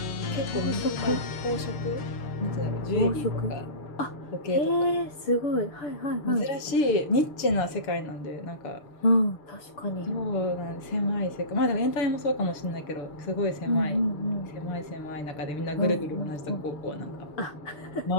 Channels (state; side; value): late; right; 6.8 ms